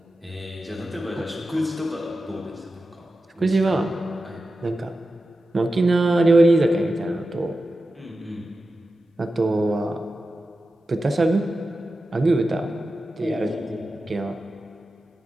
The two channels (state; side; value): normal; both; correlation 0.92